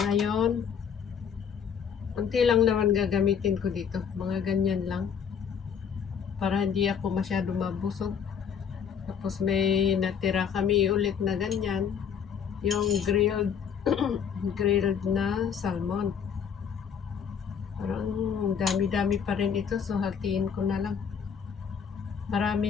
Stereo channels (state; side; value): quieter; right; 7.3 dB